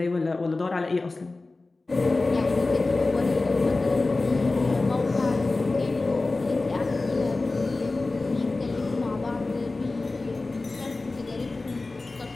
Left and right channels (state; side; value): quieter; right; 3.4 dB